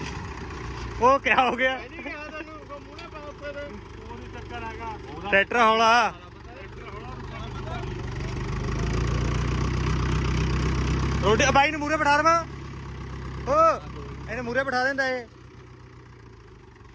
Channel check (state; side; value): identical; both; correlation 1.00